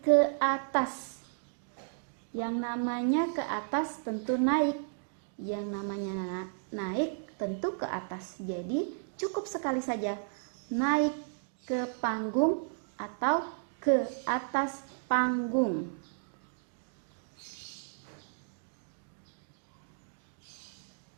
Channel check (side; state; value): left; silent; digital silence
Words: ke atas. Yang namanya ke atas tentu naik, yang namanya naik tentu ke atas. Jadi cukup sekali saja naik ke panggung atau ke atas panggung.